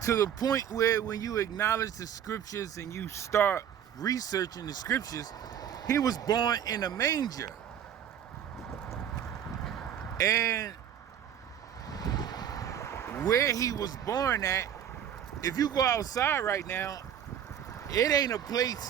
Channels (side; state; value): left; quieter; 9.5 dB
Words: To the point where when you acknowledge the scriptures and you start researching the scriptures, he was born in a manger. And where he was born at, if you go outside right now, it ain't a